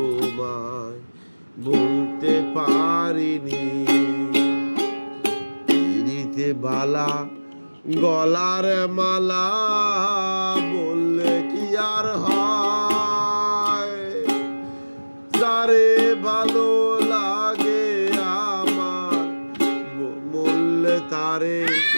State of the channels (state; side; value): inverted; both; correlation -1.00